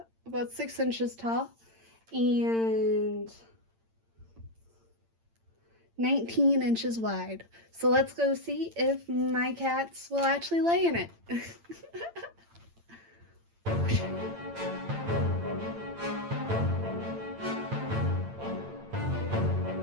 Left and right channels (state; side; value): late; left; 8.8 ms